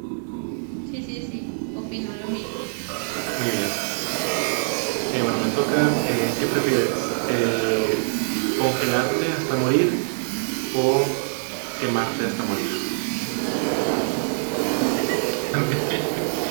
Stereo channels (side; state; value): left; silent; 63 dB below the other